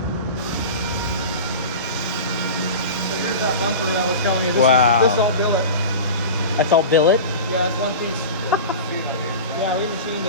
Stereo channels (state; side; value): inverted; both; correlation -0.31